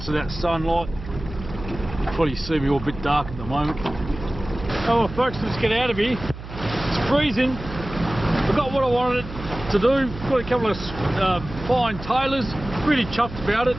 of that sunlight. Probably see me all a bit dark at the moment. Oh well, folks, let's get out of here. It's freezing. I got what I wanted to do. Got a couple of fine tailors. Really chuffed about it.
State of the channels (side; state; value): right; noise; hum, 12 dB below the sound